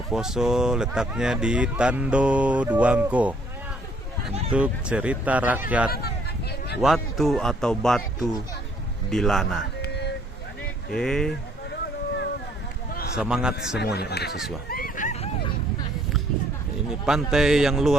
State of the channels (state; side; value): normal; both; correlation 0.64